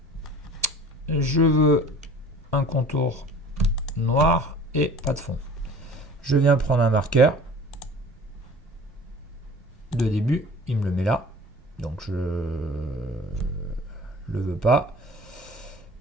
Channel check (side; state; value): both; normal; correlation 0.45